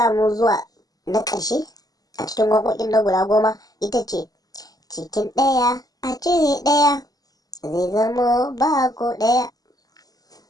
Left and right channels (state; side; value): late; right; 0.18 ms